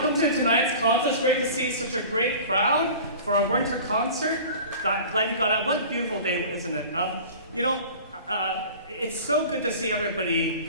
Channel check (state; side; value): inverted; both; correlation -0.40